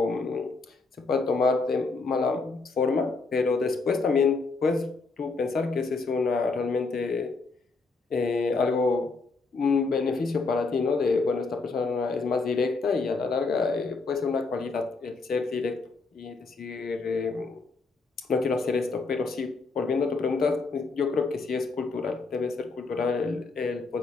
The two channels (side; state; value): right; quieter; 4.0 dB